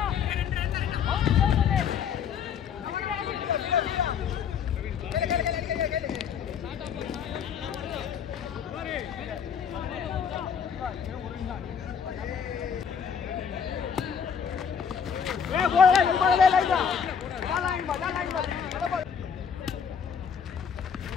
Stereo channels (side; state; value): right; quieter; 7.2 dB